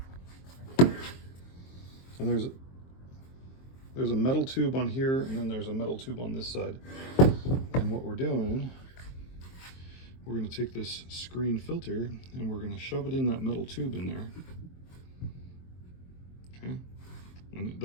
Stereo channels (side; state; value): right; late; 23 ms